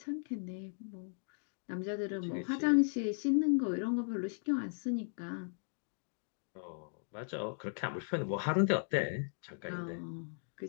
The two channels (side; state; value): right; silent; digital silence